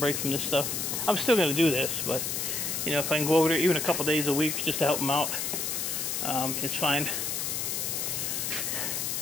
from this stuff. I'm still going to do this, but you know, if I can go over there even a couple days a week just to help them out, it's fine.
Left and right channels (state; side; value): noise; left; hiss, 1 dB below the sound